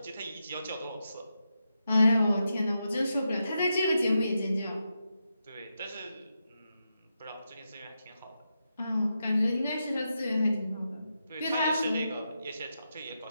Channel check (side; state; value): both; inverted; correlation -0.86